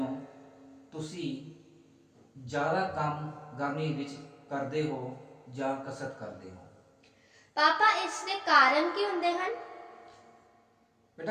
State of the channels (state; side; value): identical; both; correlation 1.00